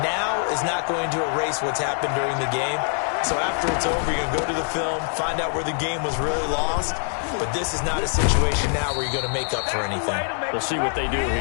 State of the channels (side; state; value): right; silent; 59 dB below the other